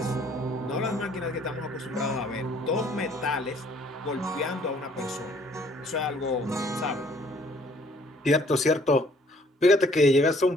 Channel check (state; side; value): normal; both; correlation 0.60